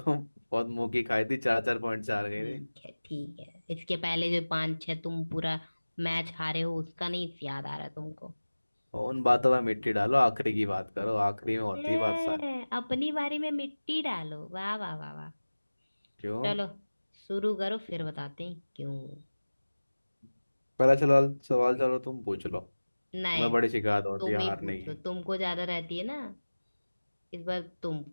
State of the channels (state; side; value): inverted; both; correlation -1.00